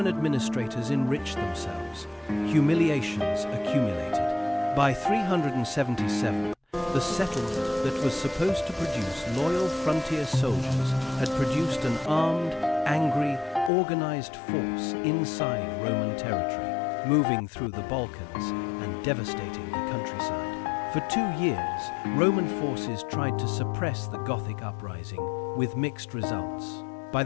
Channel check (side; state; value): right; drops out; at 13.7 s